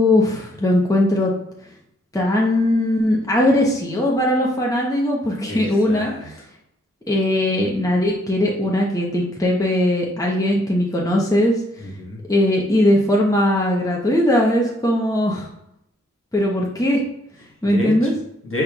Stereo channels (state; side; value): normal; both; correlation 0.69